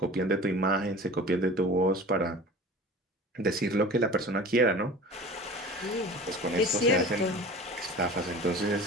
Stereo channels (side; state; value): both; normal; correlation 0.38